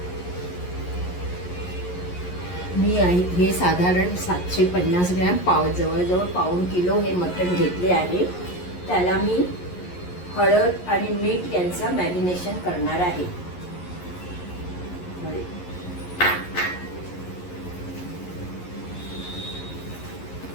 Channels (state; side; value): late; right; 11 ms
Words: मी हे साधारण 750 ग्रॅम जवळजवळ पाऊण किलो हे मटण घेतले आहे। त्याला मी हळद आणि मीठ यांचं मॅरिनेशन करणार आहे।